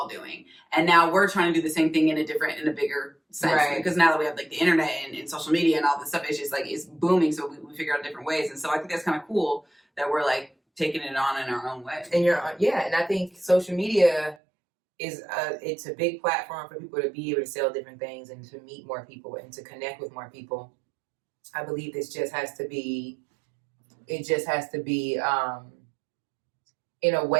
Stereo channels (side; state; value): left; drops out; at 14.4 s